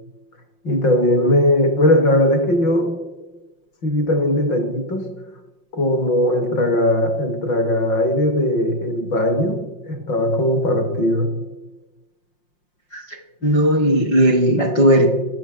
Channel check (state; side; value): late; right; 5.6 ms